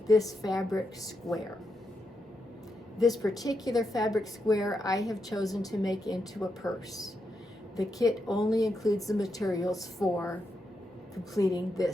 this fabric square. This particular fabric square I have chosen to make into a purse. The kit only includes the materials for completing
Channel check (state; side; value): normal; both; correlation 0.84